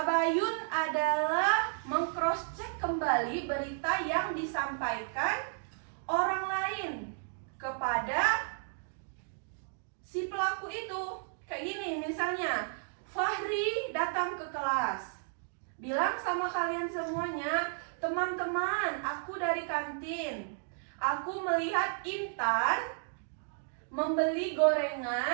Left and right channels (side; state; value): left; silent; digital silence